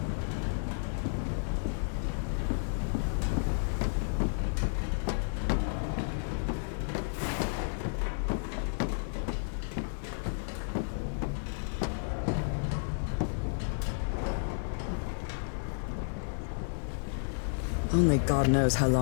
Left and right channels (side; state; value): right; silent; 56 dB below the other